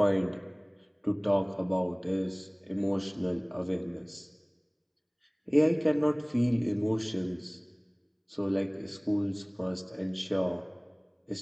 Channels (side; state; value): both; identical; correlation 1.00